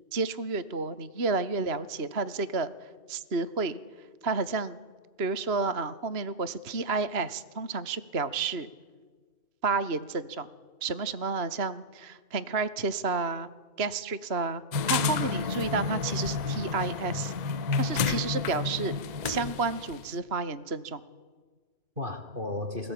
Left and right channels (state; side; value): late; left; 2.0 ms